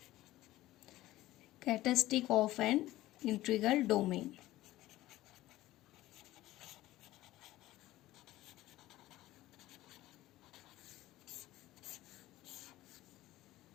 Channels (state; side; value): quieter; right; 16.2 dB